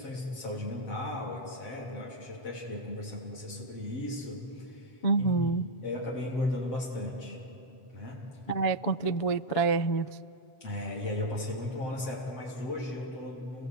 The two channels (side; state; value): right; late; 7.7 ms